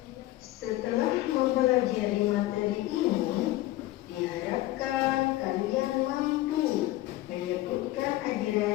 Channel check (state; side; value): quieter; right; 16.6 dB